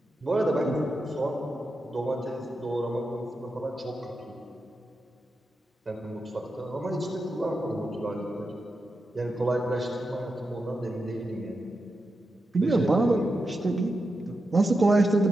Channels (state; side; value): normal; both; correlation 0.88